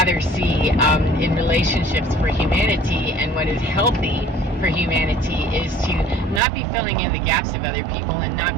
see in relationships for humanity, and what is healthy for humanity, is to not be filling in the gaps of other people and not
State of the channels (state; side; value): drops out; left; at 6.4 s